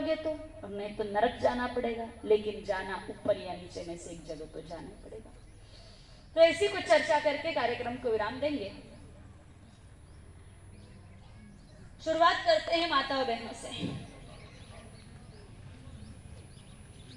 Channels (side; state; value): both; identical; correlation 1.00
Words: तो, और नहीं तो नरक जाना पड़ेगा, लेकिन जाना ऊपर या नीचे में से एक जगह तो जाना पड़ेगा। तो ऐसी कुछ चर्चा करके कार्यक्रम को विराम देंगे। शुरुआत करते हैं माता और बहनों से।